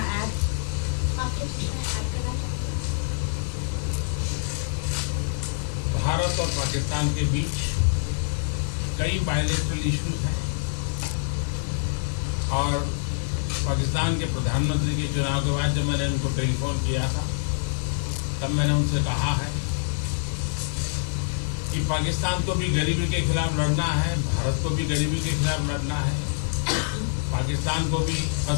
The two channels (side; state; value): right; silent; 61 dB below the other